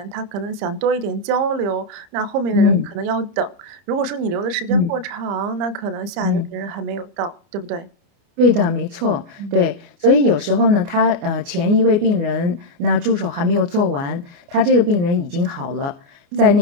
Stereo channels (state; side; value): late; left; 30 ms